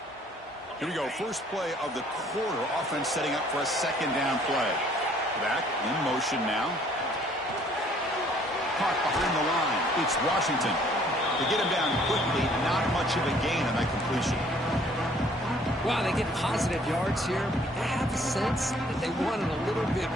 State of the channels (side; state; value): both; normal; correlation 0.60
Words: Here we go, first play of the quarter. Offense setting up for a second down play. Back in motion now. Caught behind the line. It's Washington. They get him down quickly. Not much of a gain on that completion. Wow, they get positive yards here. I have a sense that they wanted a little bit